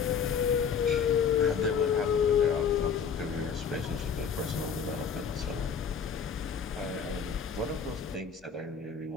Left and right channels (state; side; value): quieter; right; 6.6 dB